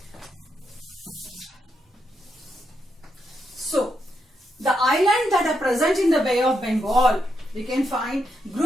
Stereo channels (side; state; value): both; normal; correlation 0.81